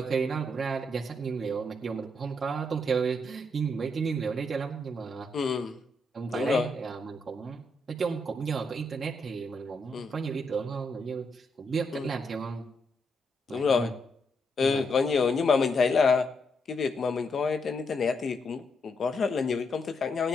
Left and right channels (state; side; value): normal; both; correlation 0.79